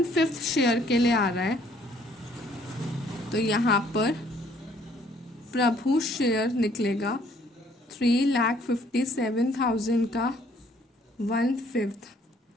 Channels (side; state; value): both; normal; correlation 0.62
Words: शेयर के लिए आ रहा है, तो यहाँ पर प्रभु शेयर निकलेगा 3,57,000 का 1/5,